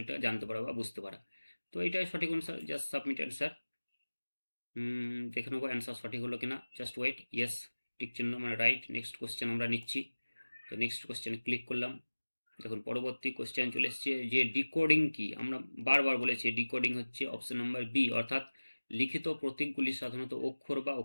জানতে পারা বা বুঝতে পারা। তো এটাই সঠিক অ্যান্সার, জাস্ট সাবমিট অ্যান্সার। দেখে নেবো অ্যান্সার সঠিক হলো কিনা, জাস্ট ওয়েট। ইয়েস, টিক চিহ্ন মানে রাইট। নেক্সট কোশ্চেন আমরা নিচ্ছি। তো নেক্সট কোশ্চেনে ক্লিক করলাম। দেখুন পরবর্তী কোশ্চেন চলে এসছে যে ডিকোডিং কি। আমরা বারবার বলেছি ডিকোডিং হচ্ছে অপশন নাম্বার বি, অর্থাৎ লিখিত প্রতীকগুলি সাধারণত অক্ষর বা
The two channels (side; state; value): both; inverted; correlation -1.00